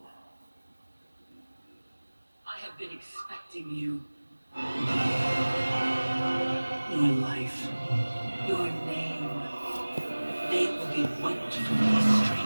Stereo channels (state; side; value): inverted; both; correlation -1.00